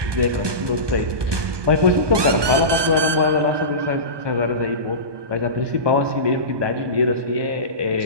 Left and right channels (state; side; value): late; left; 1.2 ms